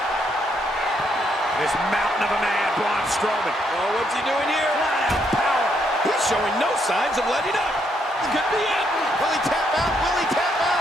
This mountain of a man, Braun Strowman. Oh, what's he doing here? Flat out power. He's showing no signs of letting up. This could be it. Will he tap out? Will he tap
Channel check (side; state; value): both; normal; correlation 0.74